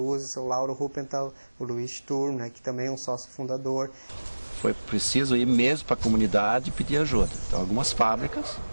o seu Lauro Ruppenthal, o Luiz Sturm, né, que também é um sócio fundador. Foi preciso ir mesmo para a comunidade e pedir ajuda. Então, algumas fábricas,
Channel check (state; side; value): inverted; both; correlation -1.00